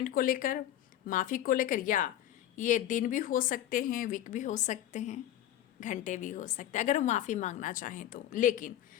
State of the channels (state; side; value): quieter; right; 12.0 dB